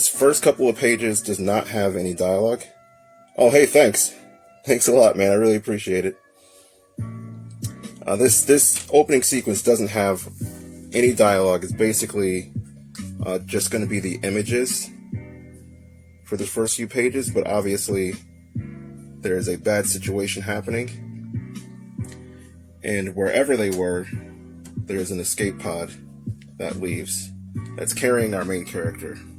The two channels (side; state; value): both; identical; correlation 1.00